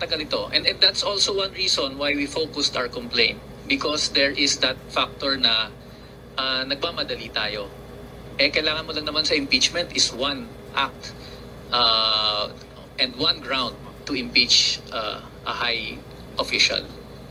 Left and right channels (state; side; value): identical; both; correlation 1.00